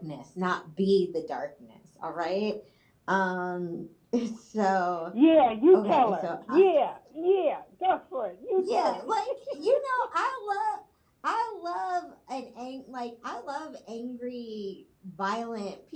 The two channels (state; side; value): identical; both; correlation 1.00